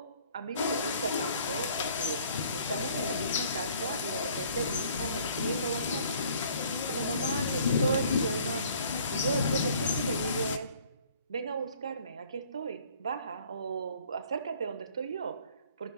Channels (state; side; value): inverted; both; correlation -0.56